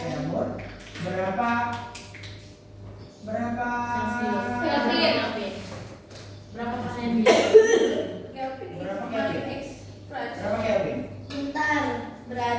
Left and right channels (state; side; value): identical; both; correlation 1.00